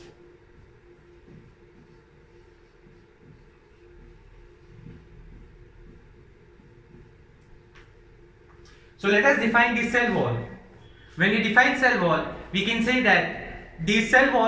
So let us define the cell wall. When we define cell wall, we can say that the cell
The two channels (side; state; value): both; identical; correlation 1.00